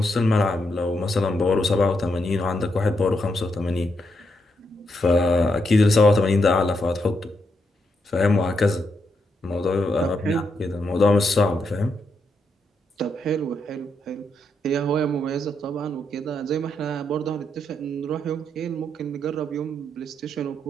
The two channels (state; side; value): normal; both; correlation 0.80